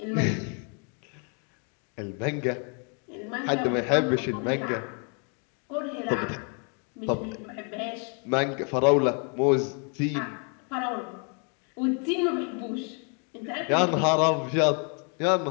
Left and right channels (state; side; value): quieter; right; 38.4 dB